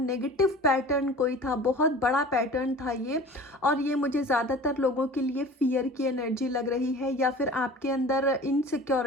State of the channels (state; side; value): normal; both; correlation 0.41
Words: पैटर्न कोई था, बहुत बड़ा पैटर्न था ये, और ये मुझे ज़्यादातर लोगों के लिए फियर की एनर्जी लग रही है, या फिर आपके अंदर